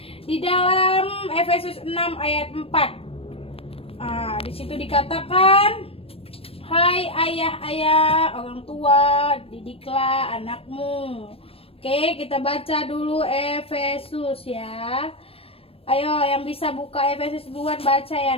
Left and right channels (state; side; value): late; right; 0.28 ms